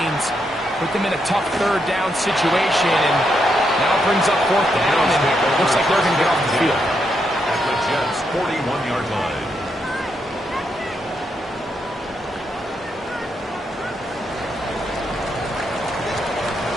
put them in a tough 3rd down situation, and now it brings up 4th down, and it looks like they're going to get off the field. At the Jets' 41-yard line.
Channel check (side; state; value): both; normal; correlation 0.80